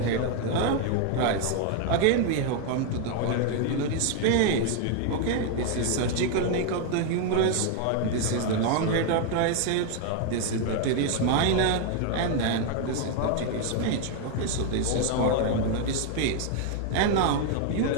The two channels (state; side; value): different; both; correlation 0.00